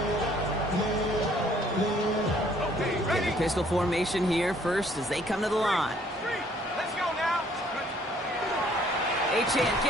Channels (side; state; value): both; normal; correlation 0.62